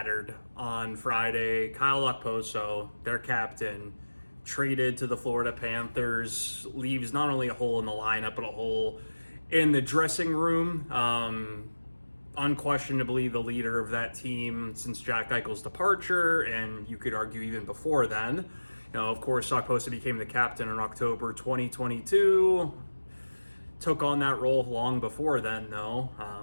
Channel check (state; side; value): inverted; both; correlation -1.00